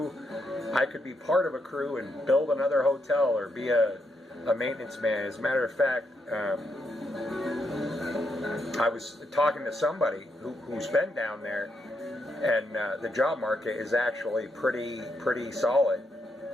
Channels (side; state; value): both; normal; correlation 0.79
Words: I could be part of a crew and build another hotel or be a maintenance man. As a matter of fact, I was talking to somebody who's been down there, and the job market is actually pretty solid